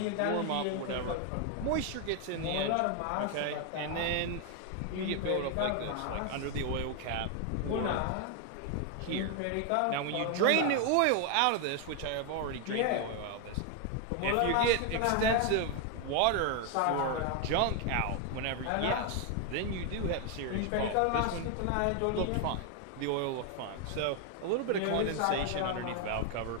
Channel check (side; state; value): both; different; correlation 0.01